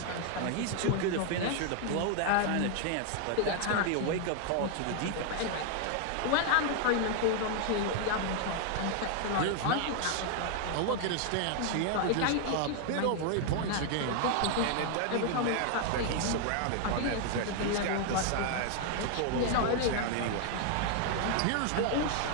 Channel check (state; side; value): different; both; correlation 0.00